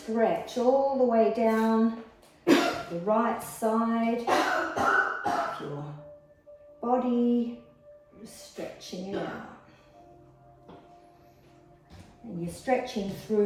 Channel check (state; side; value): identical; both; correlation 1.00